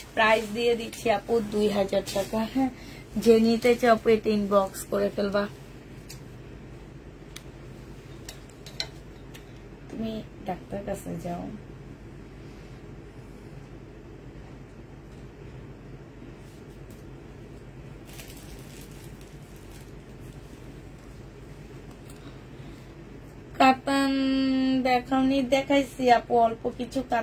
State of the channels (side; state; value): both; identical; correlation 1.00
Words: প্রাইস দিয়ে দিচ্ছি আপু 2000 টাকা। হ্যাঁ যে নিতে চাও আপু এটা ইনবক্স করে ফেলবা। তুমি ডাক্তার কাছে যাও। কাতান দেখাওনি? দেখাইছি আপু, অল্প কিছু